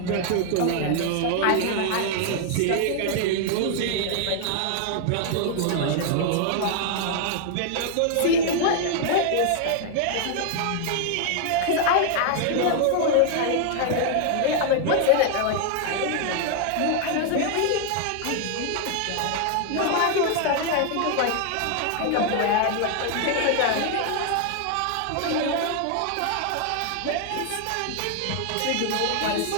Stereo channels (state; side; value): different; both; correlation 0.00